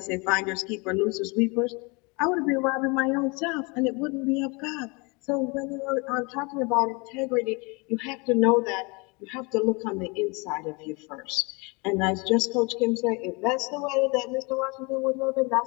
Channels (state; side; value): quieter; right; 29.1 dB